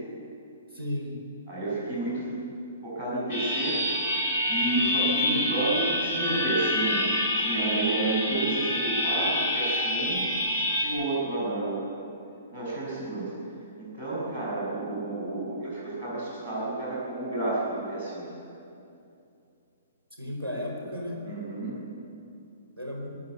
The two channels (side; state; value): both; inverted; correlation -0.40